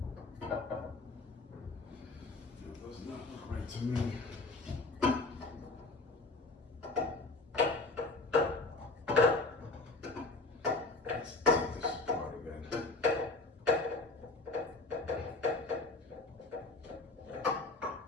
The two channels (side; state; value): right; quieter; 3.4 dB